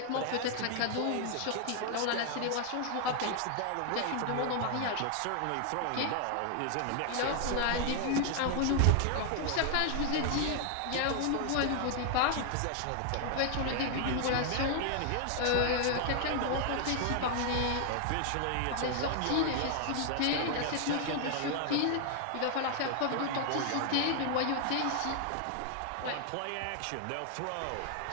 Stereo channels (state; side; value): different; both; correlation 0.00